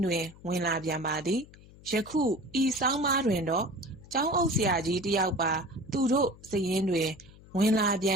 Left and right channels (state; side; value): noise; left; hum, 22 dB below the sound